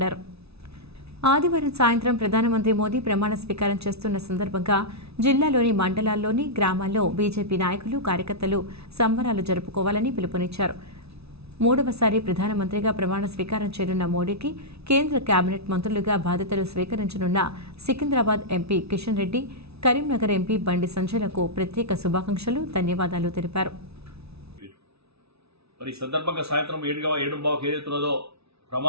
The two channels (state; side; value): late; left; 0.79 ms